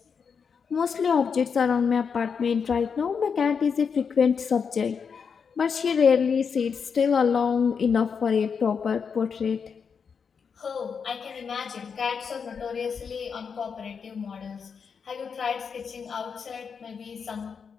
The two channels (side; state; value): right; quieter; 6.2 dB